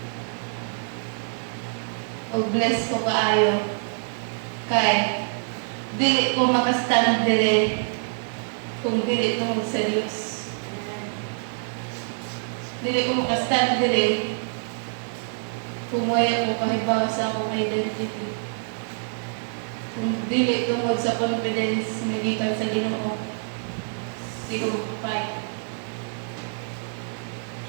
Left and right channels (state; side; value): silent; left; digital silence